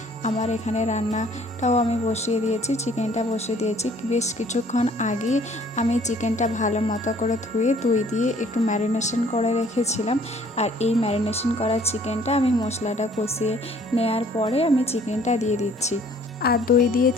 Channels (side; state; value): both; normal; correlation 0.58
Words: আমার এখানে রান্নাটাও আমি বসিয়ে দিয়েছি, চিকেনটা বসিয়ে দিয়েছি। বেশ কিছুক্ষণ আগে আমি চিকেনটা ভালো মতো করে ধুয়ে দই দিয়ে একটু ম্যারিনেশন করে রেখেছিলাম, আর এই ম্যারিনেশন করা চিকেনটা আমি মশলাটা কষিয়ে নেওয়ার পরে আমি চিকেনটা দিয়ে দিচ্ছি। আর দই দিয়ে